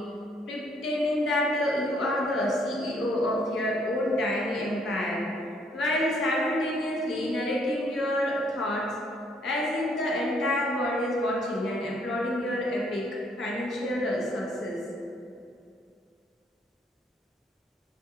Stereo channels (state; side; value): normal; both; correlation 0.66